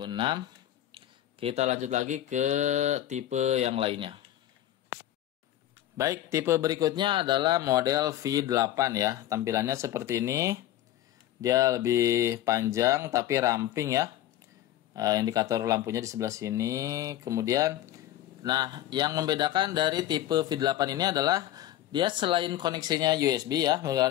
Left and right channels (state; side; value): quieter; right; 13.0 dB